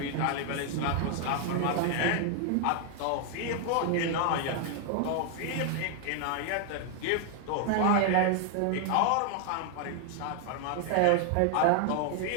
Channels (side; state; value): both; different; correlation 0.00